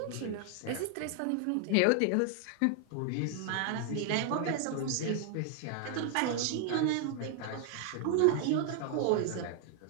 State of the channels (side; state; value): both; different; correlation 0.00